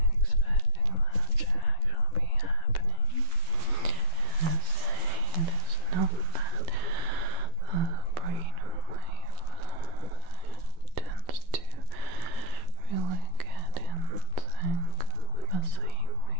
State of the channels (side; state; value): left; late; 12 ms